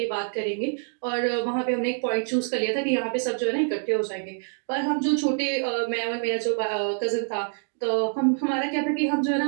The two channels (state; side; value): silent; left; digital silence